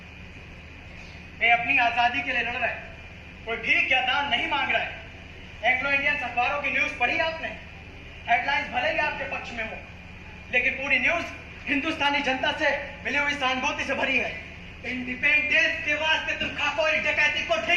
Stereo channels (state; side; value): identical; both; correlation 1.00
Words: वे अपनी आजादी के लिए लड़ रहे हैं, कोई भीख या दान नहीं मांग रहा है। एंग्लो इंडियन अखबारों की न्यूज पढ़ी आपने? हेडलाइंस भले ही आपके पक्ष में हो, लेकिन पूरी न्यूज हिंदुस्तानी जनता से मिली हुई सहानुभूति से भरी है। इंडिपेंडेंस के वास्ते तुम खाकोरी डकैती को